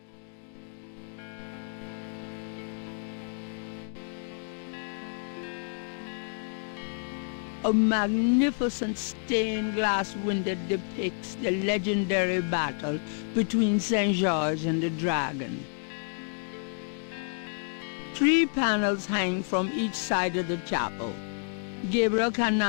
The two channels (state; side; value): silent; right; 58 dB below the other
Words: A magnificent stained glass window depicts the legendary battle between St. George and the dragon. 3 3 panels hang from each side of the chapel. Gabriel